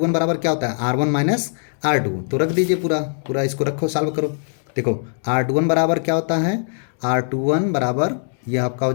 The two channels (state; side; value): silent; right; 65 dB below the other